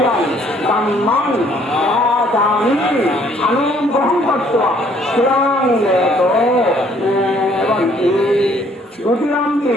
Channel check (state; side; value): normal; both; correlation 0.62